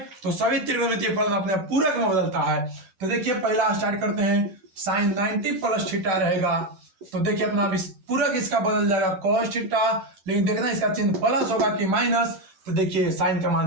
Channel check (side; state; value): left; late; 12 ms